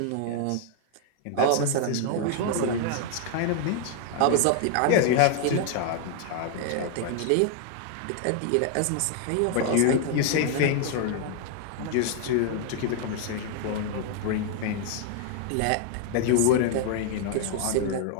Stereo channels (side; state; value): both; different; correlation 0.00